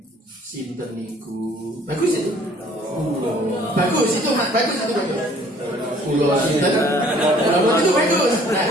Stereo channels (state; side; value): normal; both; correlation 0.56